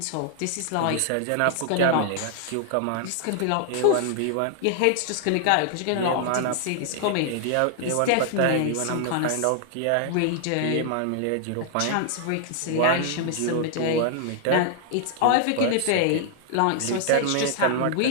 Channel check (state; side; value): different; both; correlation -0.01